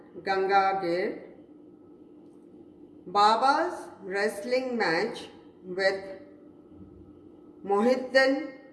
Ganga Gir, Baba's wrestling match with Mohiddin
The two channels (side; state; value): both; identical; correlation 1.00